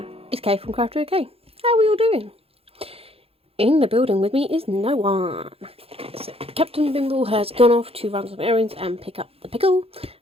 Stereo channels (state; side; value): late; left; 0.28 ms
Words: it's Kay from Craft OK. How are we all doing? In the building with me is no one. So Captain Bimble has gone off to run some errands and pick up the Pickle,